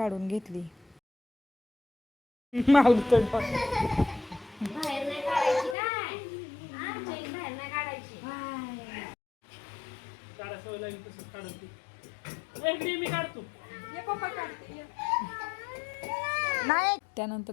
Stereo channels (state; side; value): drops out; right; at 5.8 s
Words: घेतली. माऊली तर बाहेर नाही काढायची काय? चैन बाहेर नाही काढायची. काढा सवय लागली तसंच काढून ती. इकडे मी काढतो. नाही. त्यानंतर